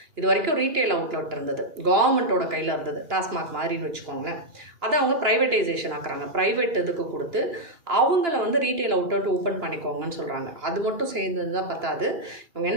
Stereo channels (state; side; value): late; left; 2.9 ms